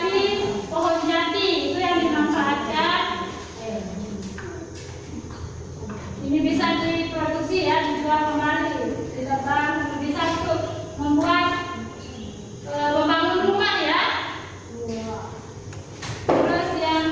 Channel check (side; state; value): both; identical; correlation 1.00